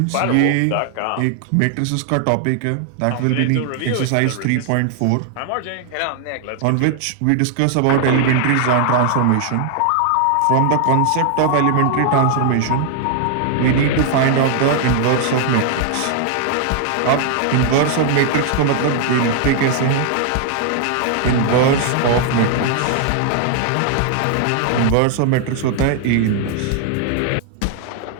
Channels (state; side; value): different; both; correlation 0.00